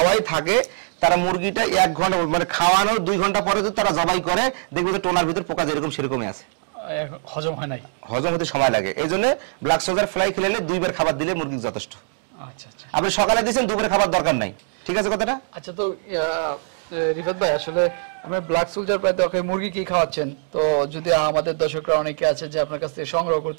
থাকে, তারা মুরগিটা 1 ঘন্টা মানে খাওয়ানোর 2 ঘন্টা পরে যদি তারা জবাই করে, দেখবে যে টোনার ভিতর পোকা যেরকম সেরকমই আছে, হজম হয় নাই, হজম হতে সময় লাগে। এই জন্য ব্ল্যাক সোলজার ফ্লাই খেলে 2 বার খাবার দিলে মুরগি যথেষ্ট। আচ্ছা আচ্ছা, আপনি সকালে দিয়েছেন, দুপুরে খাবার দরকার নাই, ঠিক আছে কথাটা? আচ্ছা, তো রিফাত ভাই আসলে আমরা ব্ল্যাক সোলজার প্রায় দরকার মুরগি কি খাওয়াচ্ছেন, তো যদি আমাদের দর্শকরা অনেকে আছে যে আপনার কাছ থেকে সংগ্রহ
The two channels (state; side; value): silent; left; 64 dB below the other